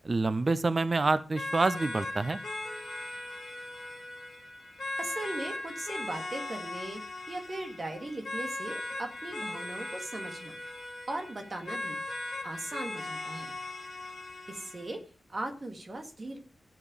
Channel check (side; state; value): both; normal; correlation 0.94